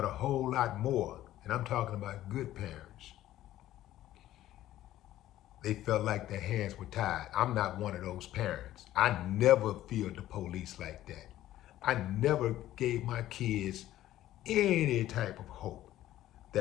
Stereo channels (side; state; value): right; quieter; 13.8 dB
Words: a whole lot more, and I'm talking about good parents, they felt like their hands were tied. I'm not one of those parents. I never feared the police like that. I never gave my kids any type of hope